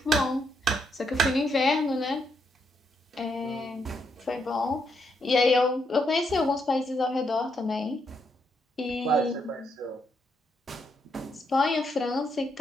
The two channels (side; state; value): both; normal; correlation 0.77